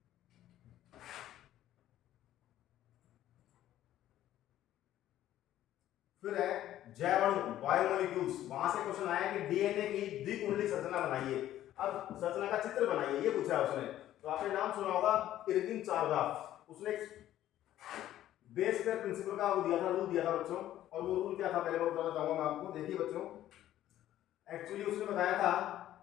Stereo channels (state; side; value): quieter; right; 12.9 dB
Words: फिर है जैवाणु, बायोमोलिक्यूल्स। वहां से क्वेश्चन आया कि डीएनए की द्विकुंडली संरचना बनाइए। अब संरचना का चित्र बनाइए, ये पूछा है उसने। तो आपने नाम सुना होगा इरविन चारगाफ, उसने बेस पेयर प्रिंसिपल का वो दिया था, रूल दिया था बच्चों। और वो रूल क्या था पहले मैं बताना चाहूंगा मैं आपको। देखिए बच्चों, एक्चुअली उसने बताया था